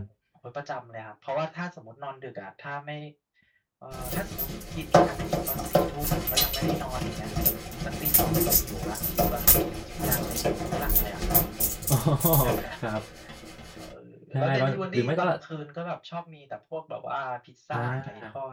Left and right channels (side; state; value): both; identical; correlation 1.00